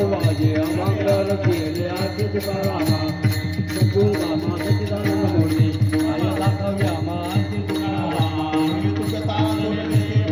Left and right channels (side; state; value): both; identical; correlation 1.00